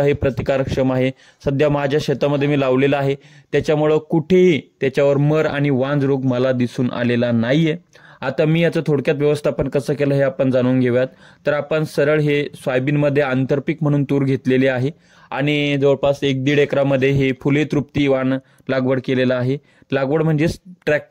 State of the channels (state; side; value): identical; both; correlation 1.00